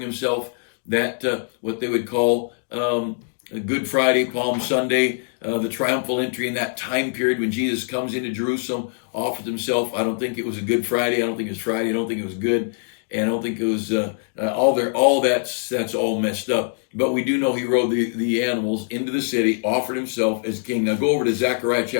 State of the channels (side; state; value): right; silent; digital silence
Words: that, what they would call Good Friday, Palm Sunday, the triumphal entry in that time period when Jesus comes into Jerusalem, offers himself. I don't think it was a Good Friday. I don't think it was Friday. I don't think it was good. and I don't think it was all that's all messed up. But we do know he rode the animals into the city, offered himself as king. Now go over to Zechariah